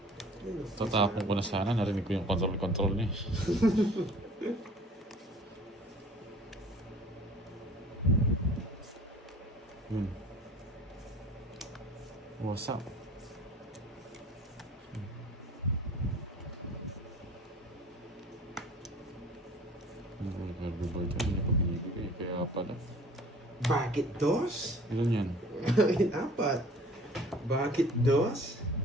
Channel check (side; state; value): both; normal; correlation 0.48